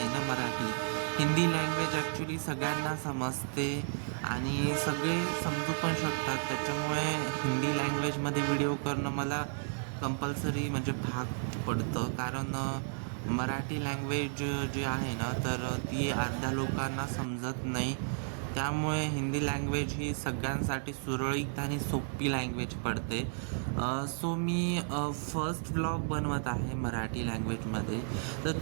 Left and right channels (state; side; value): silent; left; 56 dB below the other